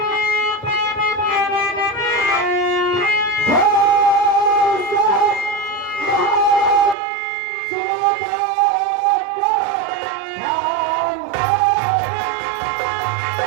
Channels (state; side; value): drops out; left; at 7.0 s